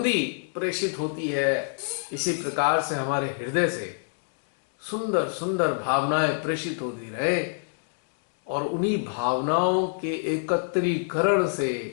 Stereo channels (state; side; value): silent; right; digital silence